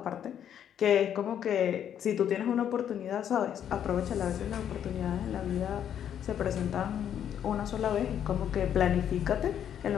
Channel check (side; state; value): right; quieter; 9.5 dB